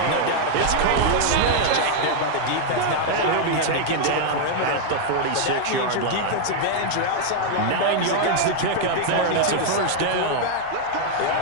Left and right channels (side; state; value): both; different; correlation 0.00